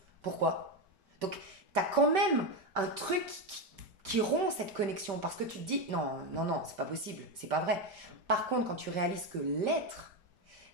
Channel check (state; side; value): late; left; 5.1 ms